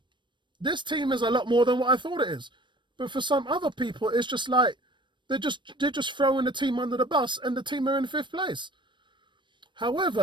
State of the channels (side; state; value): left; late; 0.22 ms